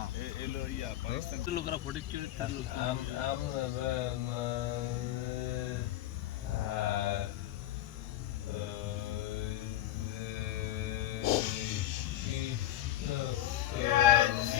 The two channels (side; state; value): right; quieter; 13.4 dB